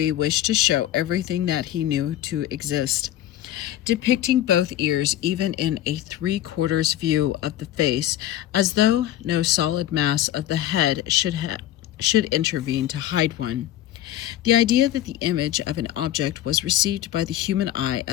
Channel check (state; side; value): quieter; right; 12.7 dB